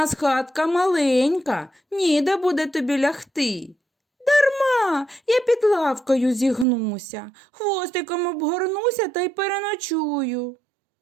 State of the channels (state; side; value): drops out; left; at 6.7 s